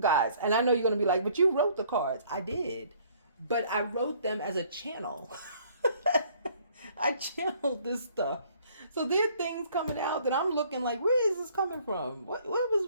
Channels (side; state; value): both; inverted; correlation -0.60